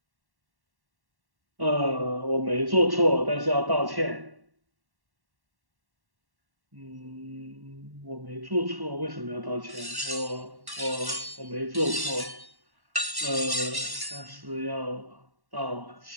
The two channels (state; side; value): late; left; 1.1 ms